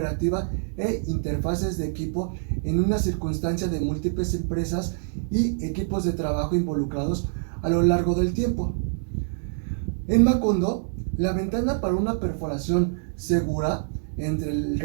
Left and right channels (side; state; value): left; silent; digital silence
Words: e interfaces de equipo en una circunstancia de múltiples empresas y equipos de trabajo involucrados a lo largo del tiempo. En Macondo, la ventana para una perforación segura entre el